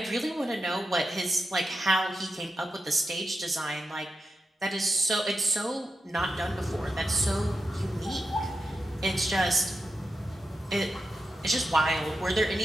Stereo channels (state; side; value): normal; both; correlation 0.88